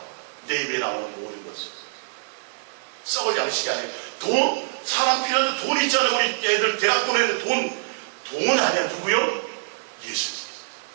내 입에 나오는 모든 것을. 썩을 양식이 아니에요. 돈? 사람 필요한데 돈 있잖아요. 우리 애들 대학 보내는 돈 아니야. 누구요? 예수님.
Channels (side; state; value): left; silent; digital silence